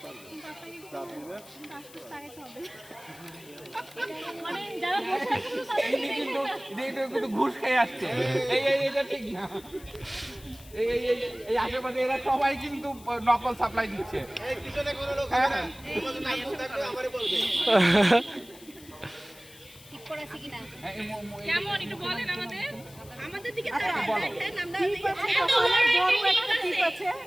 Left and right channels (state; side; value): noise; left; hiss, 21 dB below the sound